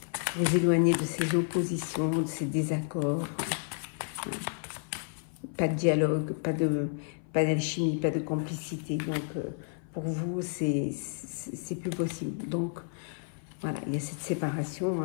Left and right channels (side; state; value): right; silent; 56 dB below the other